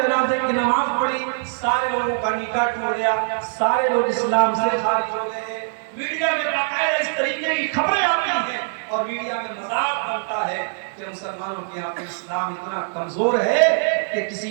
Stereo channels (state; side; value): silent; left; digital silence